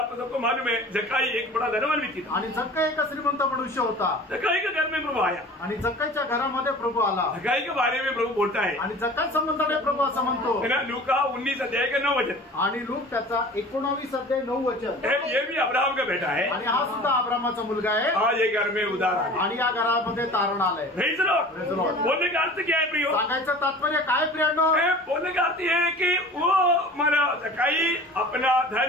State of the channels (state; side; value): normal; both; correlation 0.41